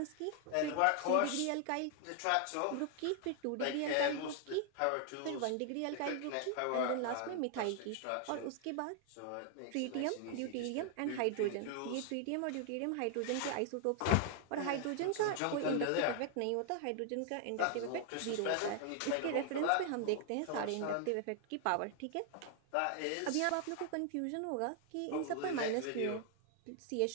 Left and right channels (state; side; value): different; both; correlation 0.00